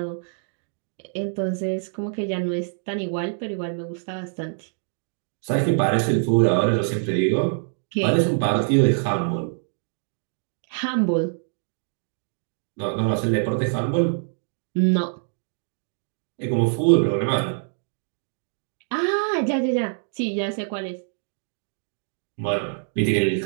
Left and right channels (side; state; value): left; silent; digital silence